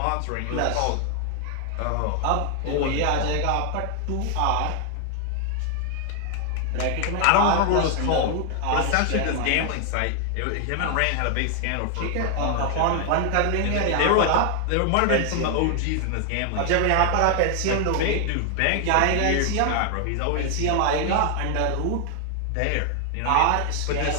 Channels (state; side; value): different; both; correlation 0.00